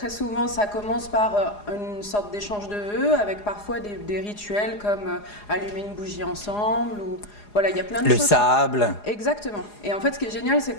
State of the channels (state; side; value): late; right; 4.8 ms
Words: souvent, ça commence par une sorte d'échange de vœux avec parfois des rituels comme allumer une bougie ensemble ou voilà, il y a plein de choses. Le sable. Exactement. Et en fait, ce qui est génial, c'est